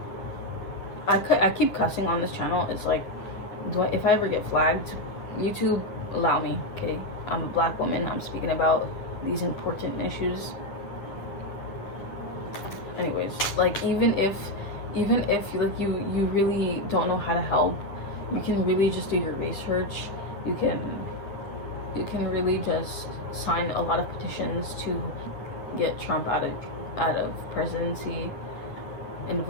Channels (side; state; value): right; late; 9.9 ms